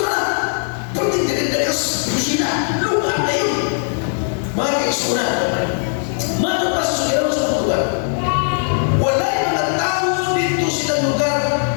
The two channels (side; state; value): right; silent; 66 dB below the other